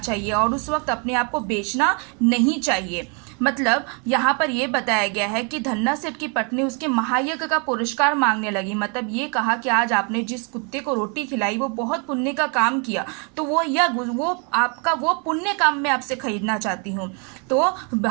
और उस वक्त अपने आप को बेचना नहीं चाहिए। मतलब यहाँ पर ये बताया गया है कि धन्ना सेठ की पत्नी उसके महायज्ञ का पुरस्कार मांगने लगी, मतलब ये कहा कि आज आपने जिस कुत्ते को रोटी खिलाई वो बहुत पुण्य का काम किया, तो वो यज्ञ वो आपका वो पुण्य काम मैं आपसे खरीदना चाहती हूँ। तो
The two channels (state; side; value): quieter; left; 35.9 dB